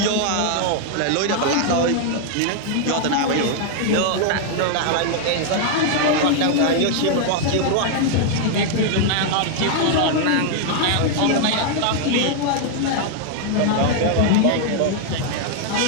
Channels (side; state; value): both; different; correlation 0.00